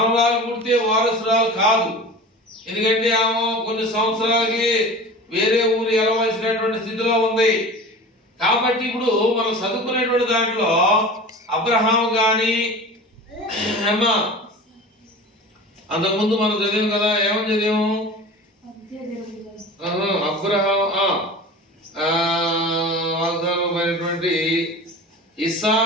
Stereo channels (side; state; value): both; normal; correlation 0.36